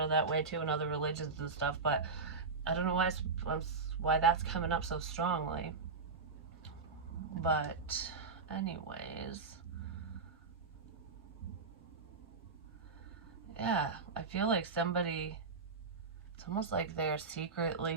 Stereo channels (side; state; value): left; quieter; 4.5 dB